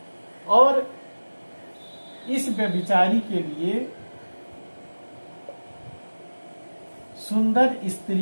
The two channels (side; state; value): both; inverted; correlation -1.00